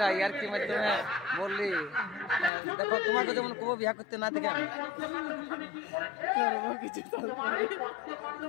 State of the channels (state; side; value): drops out; right; at 2.5 s